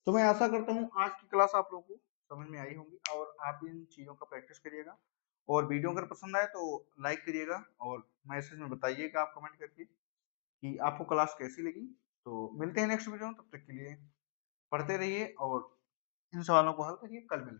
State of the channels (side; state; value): right; silent; digital silence